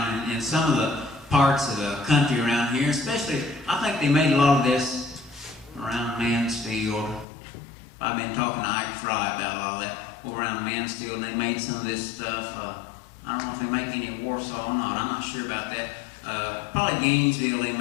in some of the parts of the country around here. Especially, I think they made a lot of this around Mansfield. I've been talking to Ike Fry about all that. Over around Mansfield, and they made some of this stuff. I don't know if they make any at Warsaw or not. I'm not sure about that. Probably Gainesville, they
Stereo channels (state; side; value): drops out; right; at 7.2 s